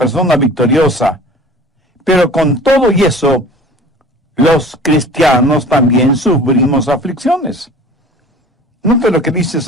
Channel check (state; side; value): normal; both; correlation 0.43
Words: victoriosa, pero con todo y eso, los cristianos también sufrimos aflicciones. Note lo que dice